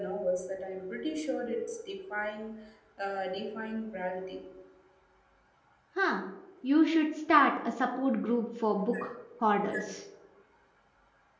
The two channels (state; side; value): identical; both; correlation 1.00